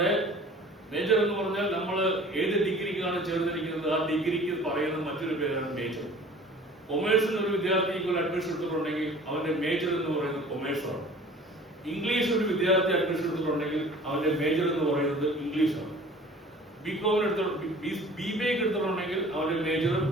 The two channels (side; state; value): both; normal; correlation 0.47